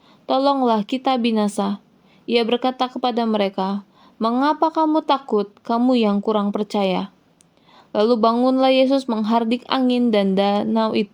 tolonglah kita binasa." Ia berkata kepada mereka, "Mengapa kamu takut, kamu yang kurang percaya?" Lalu bangunlah Yesus menghardik angin dan danau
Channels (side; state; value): both; identical; correlation 1.00